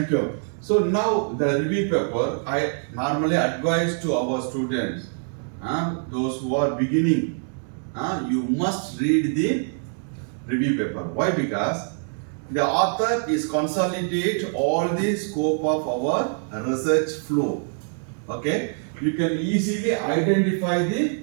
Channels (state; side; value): silent; left; 62 dB below the other